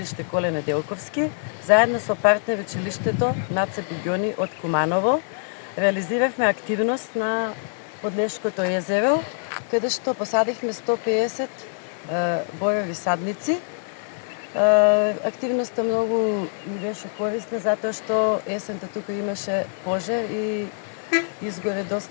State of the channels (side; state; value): right; silent; digital silence